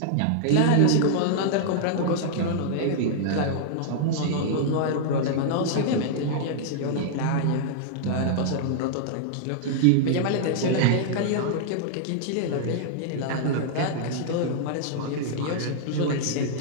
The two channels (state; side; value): different; both; correlation -0.01